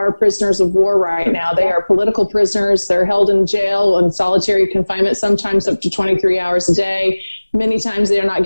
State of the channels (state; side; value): inverted; both; correlation -1.00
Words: prisoners of war right now. They are political prisoners. They're held in jail in solitary confinement, sometimes up to 23 hours a day. Many times they are not